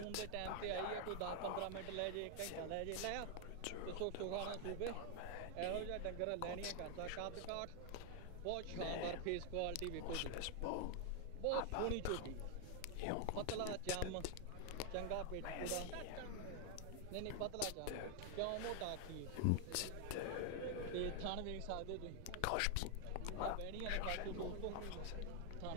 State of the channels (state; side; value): different; both; correlation 0.00